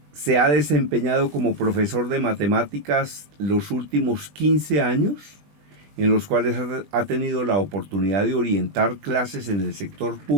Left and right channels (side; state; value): left; late; 20 ms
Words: Se ha desempeñado como profesor de matemáticas los últimos 15 años, en los cuales ha tenido la oportunidad de orientar clases en el sector